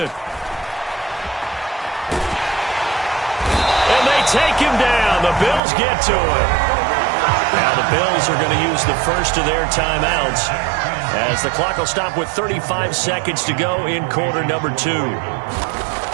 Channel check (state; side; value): drops out; left; at 5.6 s